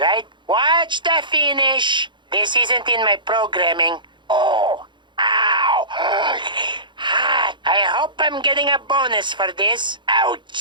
Watch the finish. This isn't in my programming. Oh, ow. Hot. I hope I'm getting a bonus for this.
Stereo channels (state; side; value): late; left; 0.23 ms